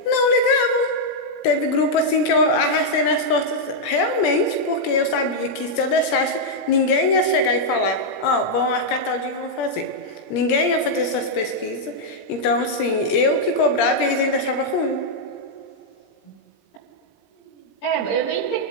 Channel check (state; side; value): late; right; 18 ms